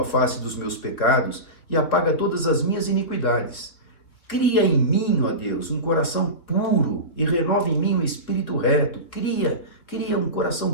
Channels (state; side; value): late; right; 3.5 ms